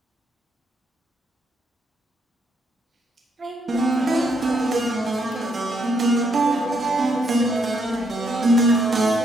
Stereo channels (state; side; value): normal; both; correlation 0.75